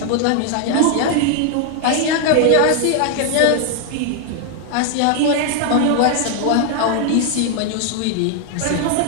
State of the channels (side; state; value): both; different; correlation 0.00